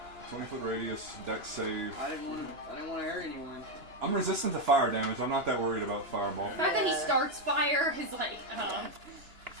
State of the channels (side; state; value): left; late; 3.0 ms